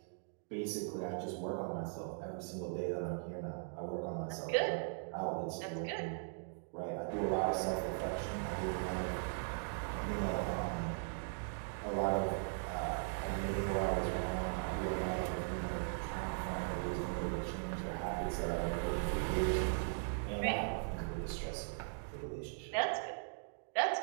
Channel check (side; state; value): left; silent; digital silence